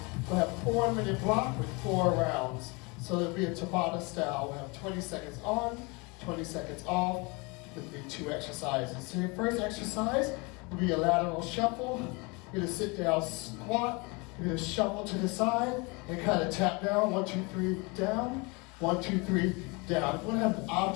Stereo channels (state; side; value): quieter; right; 28.4 dB